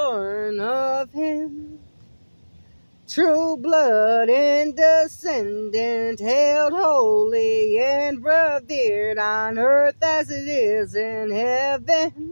of him. True blood and descendant, held holy and revered on earth as it is in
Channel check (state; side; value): inverted; both; correlation -1.00